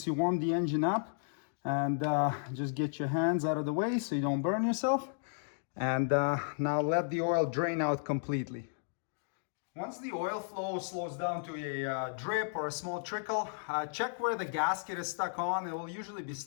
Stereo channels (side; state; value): right; silent; digital silence